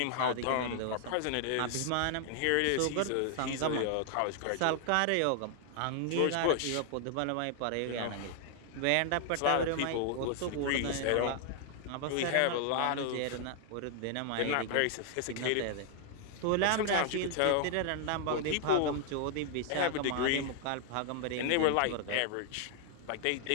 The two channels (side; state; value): both; different; correlation 0.00